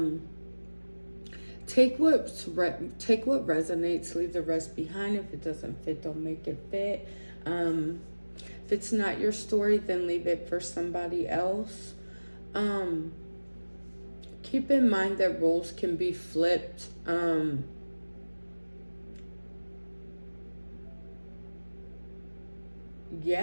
take what resonates, leave the rest behind. If it doesn't fit, don't make it fit. If it's not your story, then leave it for somebody else. Um, Keep in mind that roles can be flipped.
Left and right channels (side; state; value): both; inverted; correlation -1.00